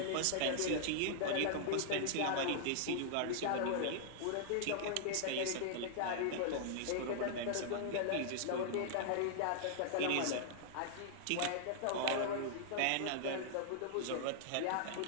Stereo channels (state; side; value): different; both; correlation -0.01